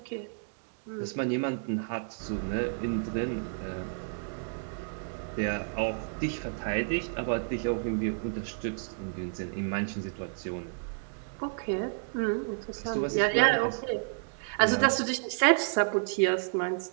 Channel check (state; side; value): silent; left; digital silence